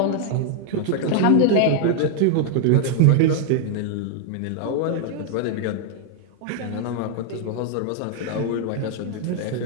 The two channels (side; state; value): both; different; correlation 0.00